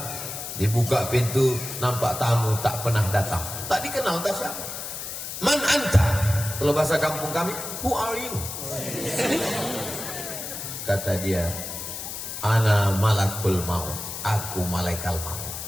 Dibuka pintu, nampak tamu tak pernah datang, tak dikenal, tak siapa. Man anta? Kalau bahasa kampung kami, who are you? Kata dia, ana malakul maut, aku malaikat maut.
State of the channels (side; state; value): left; noise; hiss, 7 dB below the sound